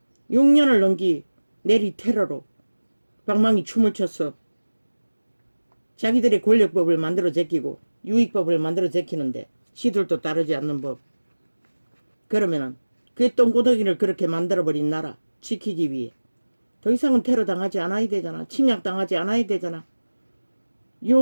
6년을 넘기 내리 테러로 방망이 춤을 췄어. 자기들의 권력법을 만들어 제끼고 유익법을 만들어 제끼는데 시들도 따르지 않는 법. 그러면은 그 똥구덩이를 그렇게 만들어버린 나라 지키기 위해 더 이상은 테러 당하지 않아야 되잖아. 침략 당하지 않아야 되잖아.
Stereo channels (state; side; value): inverted; both; correlation -1.00